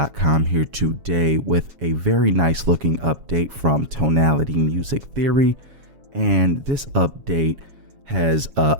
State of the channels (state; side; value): late; left; 7.2 ms